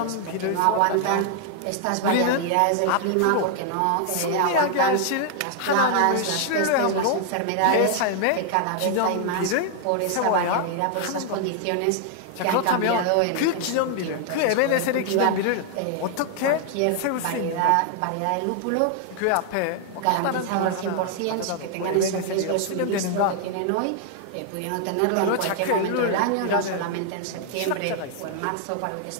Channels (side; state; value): both; different; correlation 0.00